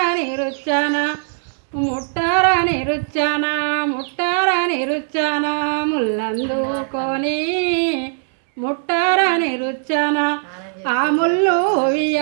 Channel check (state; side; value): silent; left; digital silence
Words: రుచ్చాన ముట్టరని రుచ్చాన ముల్లందుకొని ముట్టరని రుచ్చాన ఆ ముళ్ళు